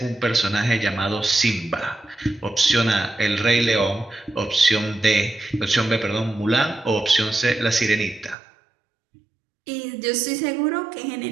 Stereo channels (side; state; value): left; drops out; at 8.3 s